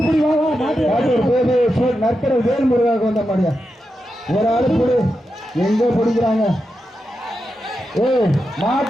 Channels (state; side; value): normal; both; correlation 0.88